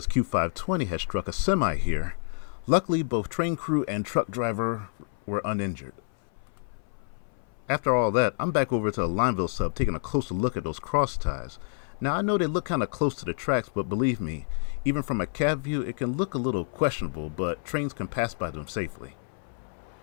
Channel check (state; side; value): silent; right; 59 dB below the other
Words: Q520 had struck a semi here. Luckily both train crew and truck driver were uninjured. After all that, I'm back over to the Lineville sub taking a closer look at those cross ties. Now I know they look kind of close to the tracks, but believe me, even from a cab view it can look a little questionable, but trains can pass by them safely.